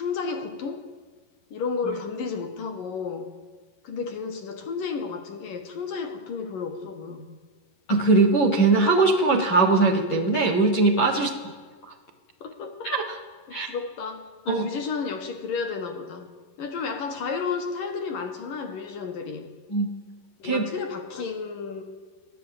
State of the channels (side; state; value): right; late; 11 ms